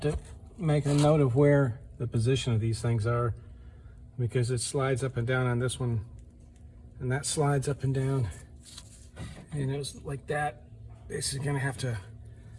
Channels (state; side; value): identical; both; correlation 1.00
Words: to make a note of where the position of these things are, because it slides up and down on this one, and that slides up and down, and it was like that. This is gonna have to